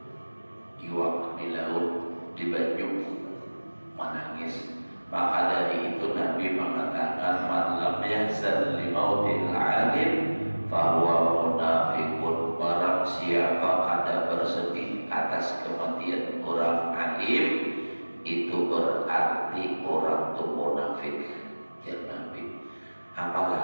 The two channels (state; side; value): inverted; both; correlation -1.00